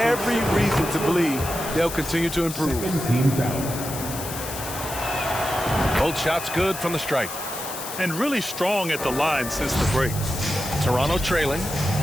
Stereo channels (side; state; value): left; noise; hiss, 9 dB below the sound